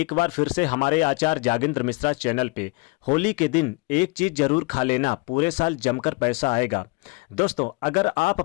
बार फिर से हमारे आचार्य जागेंद्र मिश्रा चैनल पे। होली के दिन एक चीज जरूर खा लेना, पूरे साल जमकर पैसा आएगा। दोस्तों, अगर आप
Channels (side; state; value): right; quieter; 27.1 dB